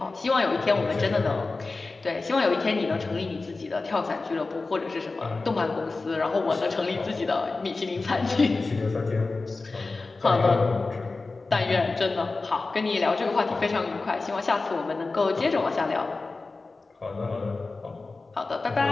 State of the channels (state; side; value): quieter; right; 3.6 dB